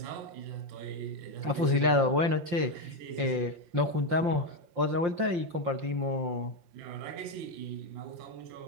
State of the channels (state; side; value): late; left; 5.7 ms